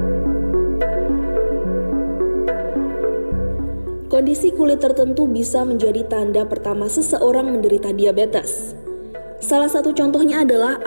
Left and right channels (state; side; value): inverted; both; correlation -1.00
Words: Kondisi kulit tertentu bisa menjadi tanda pertama seseorang menderita diabetes. Salah satu contohnya adalah